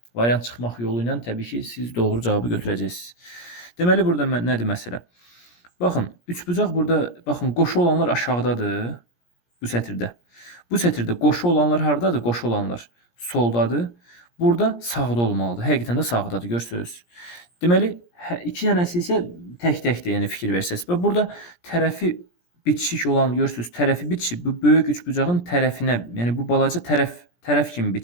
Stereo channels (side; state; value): right; late; 17 ms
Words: Variant çıxmaq yolu ilə təbii ki siz doğru cavabı götürəcəksiniz. Deməli burada nədir məsələ? Baxın, üçbucaq burada, baxın, qoşu olanlar aşağıdadır bu sətirdə. Bu sətirdə qoşu olanlar hardadır? Qoşu olanlar soldadır. Burada sağda olmalıdır. Həqiqətən də sağdadır, görürsünüz. Deməli, 2 dənəsi isə tək-təkdir, yəni fikir versəz. Və burada tərəfi bitişik olan, görürsünüz, tərəfi bitişib, bu böyük üçbucağın tərəfinə, yəni bu balaca tərəf kimi